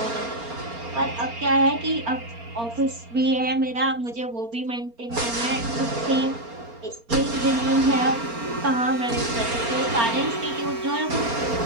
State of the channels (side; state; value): left; late; 4.3 ms